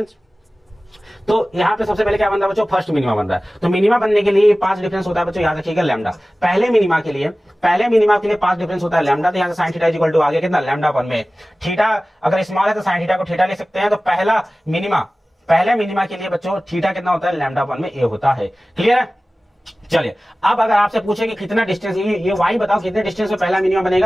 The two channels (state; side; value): normal; both; correlation 0.97